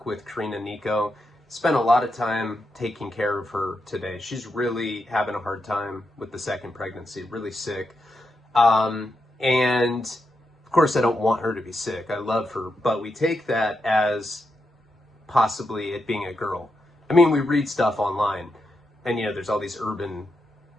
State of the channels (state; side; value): normal; both; correlation 0.85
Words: with Karina and Nico. Spent a lot of time taking care of her today. She's really having a hard time with the second pregnancy, really sick. And of course, I don't want her to be sick. I love her, but we take that as possibly it being a girl. I mean, we read stuff online, and there's all these urban